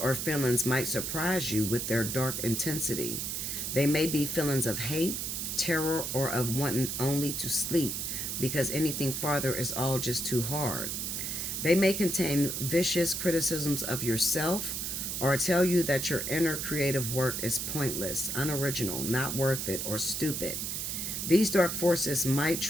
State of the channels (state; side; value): noise; right; hiss, 3 dB below the sound